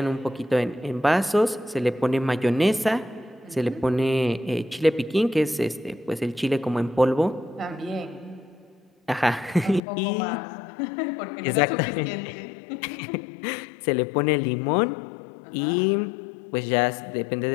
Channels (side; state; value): right; drops out; at 9.8 s